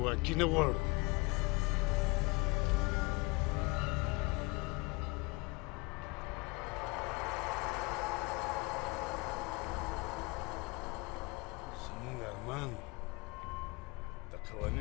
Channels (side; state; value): right; quieter; 26.9 dB